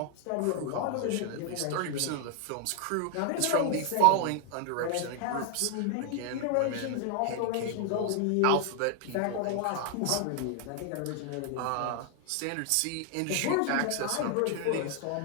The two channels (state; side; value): different; both; correlation 0.00